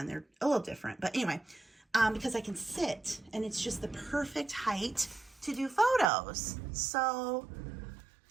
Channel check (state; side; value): drops out; left; at 6.1 s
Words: They're a little different, but anyway, because I can sit, and it's just the perfect height to do photos. So